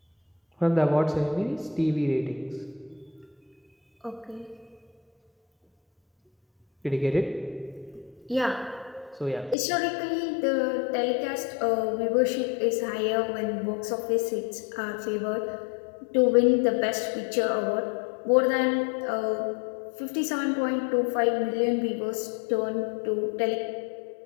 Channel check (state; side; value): drops out; right; at 9.6 s